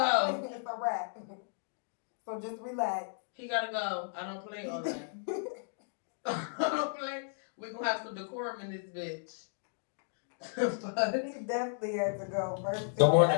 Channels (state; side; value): silent; right; digital silence